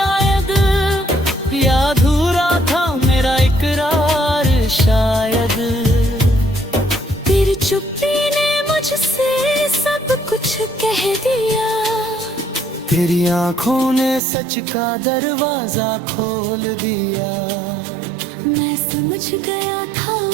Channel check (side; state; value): left; drops out; at 14.2 s